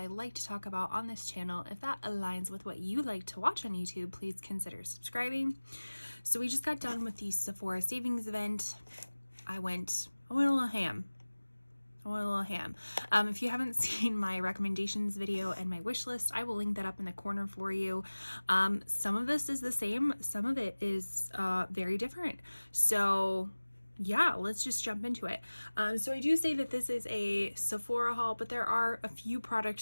like to talk about on this channel. If that aligns with what you like to watch on YouTube, please consider subscribing. So we just got done with the Sephora savings event. I went a little ham. If you haven't seen my recommendations video and my wish list, I will link that up in the corner for you. Some of this is the same, some of it is very different. So yeah, let's just jump into it. So I do say that this is a Sephora haul, but there are a few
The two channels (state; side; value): inverted; both; correlation -1.00